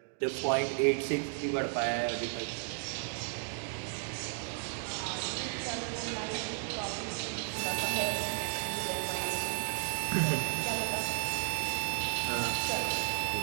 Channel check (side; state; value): left; silent; 55 dB below the other